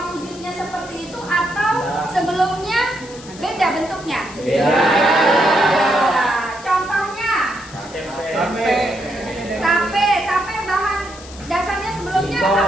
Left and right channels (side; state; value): left; noise; hiss, 18 dB below the sound